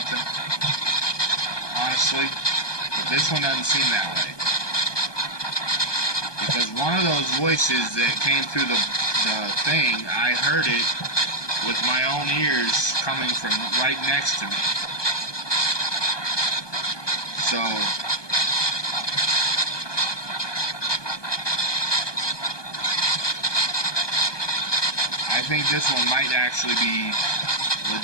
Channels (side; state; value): right; late; 1.2 ms